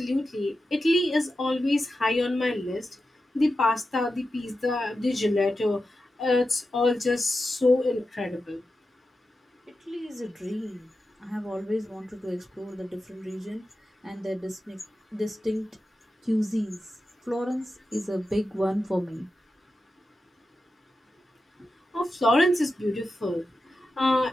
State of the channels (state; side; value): normal; both; correlation 0.91